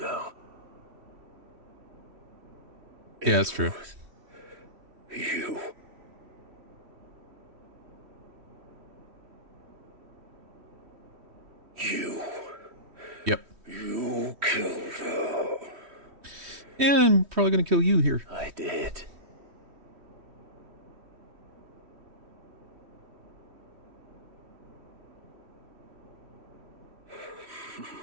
Yeah, that's true. You. You. Yep. You killed her. Yeah, I'm probably gonna kill you here. I did.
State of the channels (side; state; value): left; late; 3.1 ms